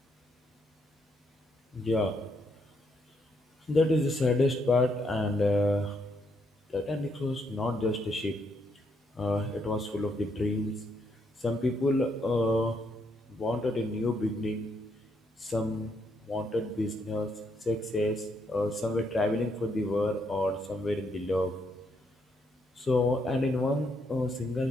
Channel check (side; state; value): both; normal; correlation 0.75